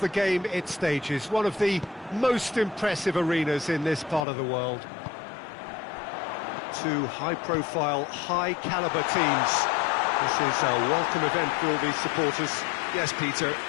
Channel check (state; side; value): drops out; right; at 4.2 s